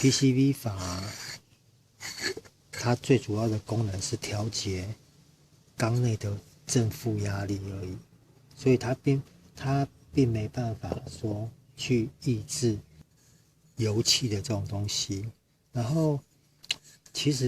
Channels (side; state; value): both; identical; correlation 1.00